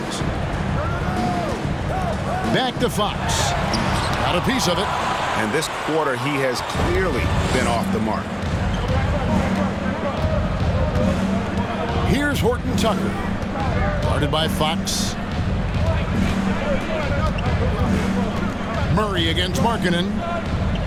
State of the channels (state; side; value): identical; both; correlation 1.00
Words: Back to Fox. Got a piece of it. And this quarter, he has clearly been off the mark. Here's Horton Tucker. Guarded by Fox. Murray against Markkanen.